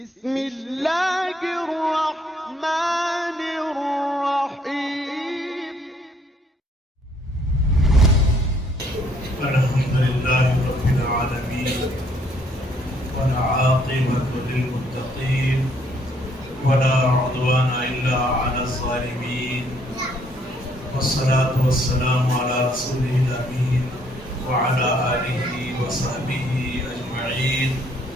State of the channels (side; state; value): both; normal; correlation 0.66